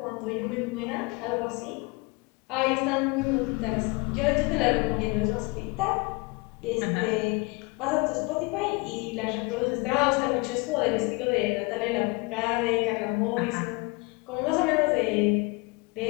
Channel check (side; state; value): right; quieter; 27.5 dB